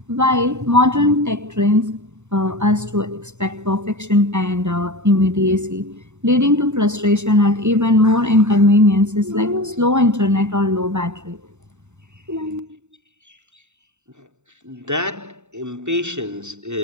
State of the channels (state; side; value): late; left; 0.83 ms